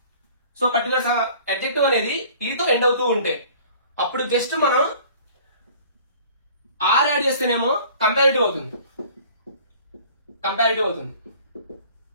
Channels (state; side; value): inverted; both; correlation -0.50